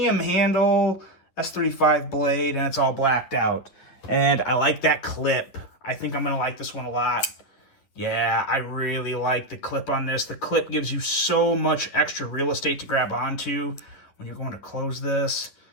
handle, S35 blade, and it's all blacked out. And I like that clip. I think I'm going to like this one a lot. Yeah, I really like the clip on this. The clip gives you so much extra real estate to grab onto when you're going to close this.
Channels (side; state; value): right; late; 10 ms